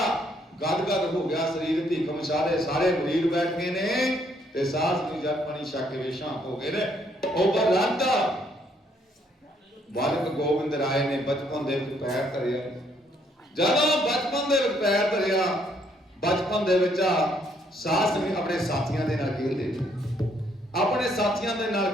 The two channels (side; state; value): both; normal; correlation 0.69